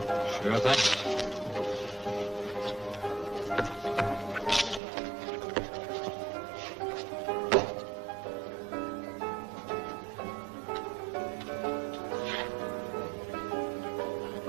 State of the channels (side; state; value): left; drops out; at 4.8 s